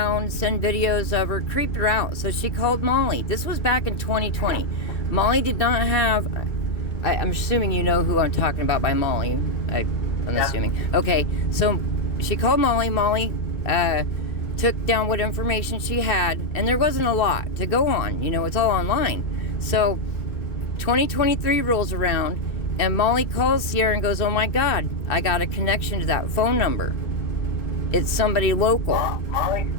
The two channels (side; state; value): right; late; 2.3 ms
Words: send videos of her, creep her out. So she called Molly. This was back in 2020. Molly did not have, I'm assuming you know who I'm talking about by Molly. I'm assuming. Okay, so she called Molly. Molly took down what information she had, and there wasn't a lot to go on. It's all online. So 2023 rolls around, and Molly calls Sierra and goes, "Oh my God, I got a connection to that phone number. It's somebody local." Molly